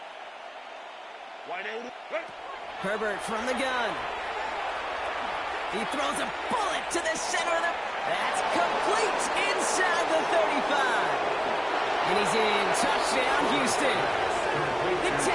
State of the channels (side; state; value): both; identical; correlation 1.00